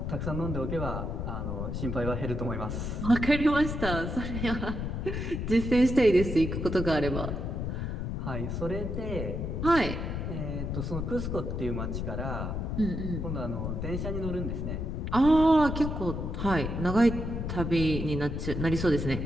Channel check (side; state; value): left; noise; rumble, 3 dB below the sound